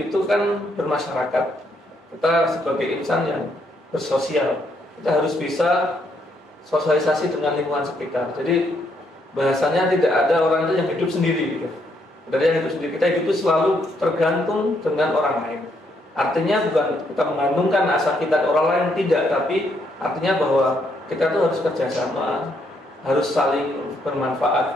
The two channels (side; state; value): both; normal; correlation 0.74